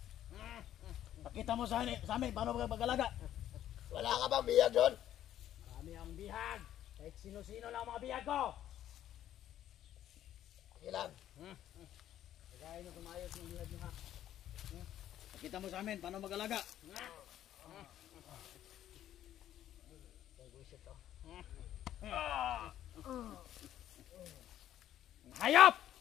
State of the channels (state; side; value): quieter; right; 11.8 dB